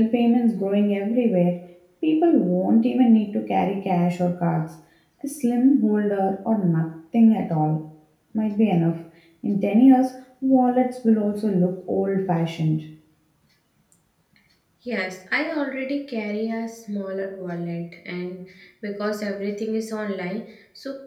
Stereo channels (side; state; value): both; identical; correlation 1.00